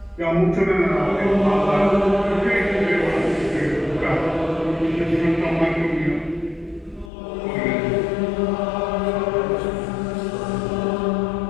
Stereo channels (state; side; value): drops out; right; at 7.1 s